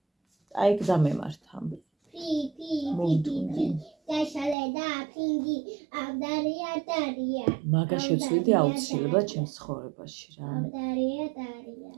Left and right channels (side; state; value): left; drops out; at 4.5 s